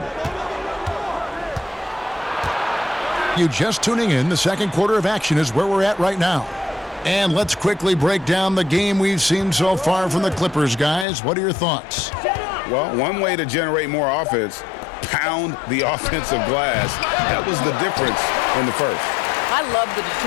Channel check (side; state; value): right; drops out; at 11.1 s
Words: You just tuning in, the second quarter of action is where we're at right now. And let's quickly break down the game we've seen so far from the Clippers, guys. What are your thoughts? Well, one way to generate more offense, pound the offensive glass. That was the difference in the first. I love the